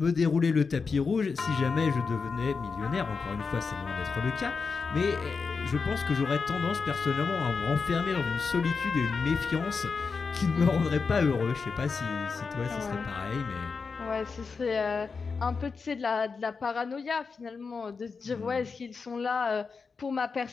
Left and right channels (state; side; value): quieter; right; 5.0 dB